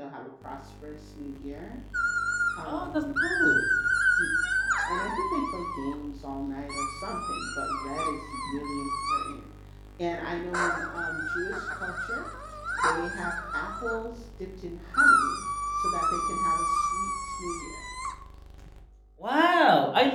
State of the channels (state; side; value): identical; both; correlation 1.00